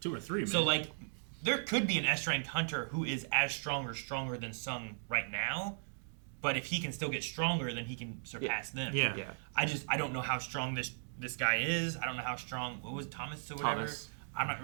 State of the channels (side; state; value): left; silent; digital silence